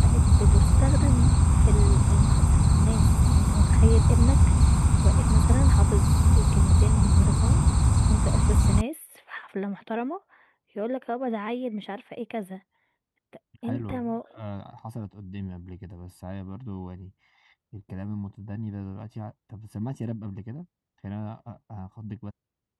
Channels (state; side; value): identical; both; correlation 1.00